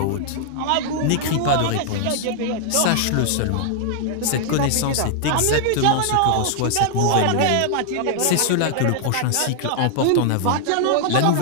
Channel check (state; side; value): different; both; correlation -0.01